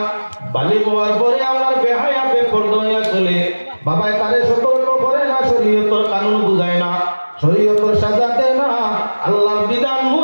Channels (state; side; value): inverted; both; correlation -1.00